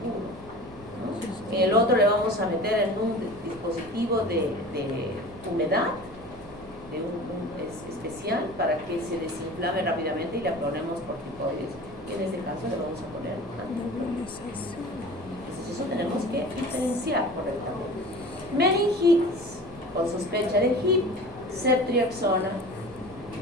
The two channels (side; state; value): right; noise; hum, 19 dB below the sound